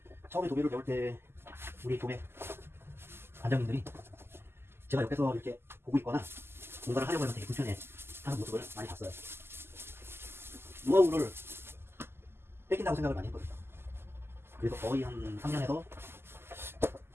처음에 도배를 배울 때 우리 도배 관장님들이 제가 옆에서 이렇게 보고 있거나 뭔가를 하려고 하면 되게 불편해 하는 모습을 많이 봤어요. 노하우를 뺏긴다고 생각을 많이 했거든요. 그래서 거의 한 3년에서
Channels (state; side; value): late; left; 0.12 ms